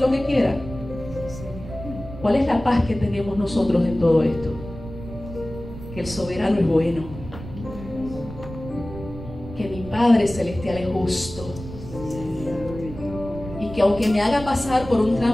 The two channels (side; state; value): right; noise; rumble, 12 dB below the sound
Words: lo que quiera. ¿Cuál es la paz que tenemos nosotros en todo esto? Que el soberano es bueno, que mi Padre Celestial es justo, y que aunque me haga pasar por un